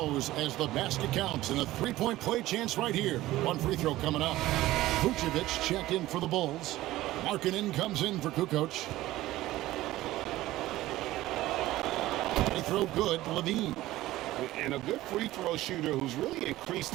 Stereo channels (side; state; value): left; quieter; 16.3 dB